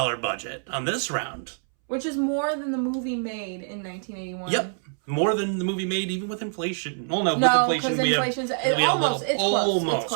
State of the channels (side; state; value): left; silent; 61 dB below the other